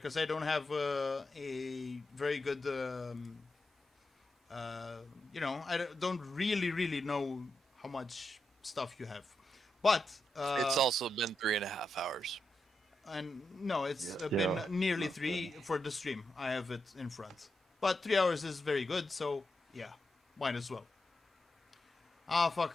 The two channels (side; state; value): both; normal; correlation 0.86